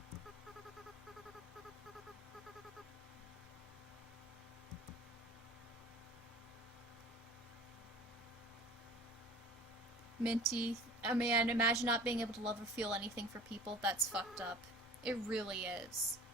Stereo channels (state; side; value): normal; both; correlation 0.45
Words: Minty, man, imagine not being able to love or feel anything for people. That's fucked up. It really is.